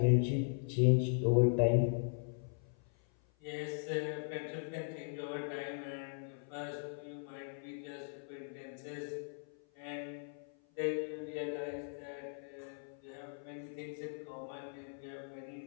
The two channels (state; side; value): silent; right; 52 dB below the other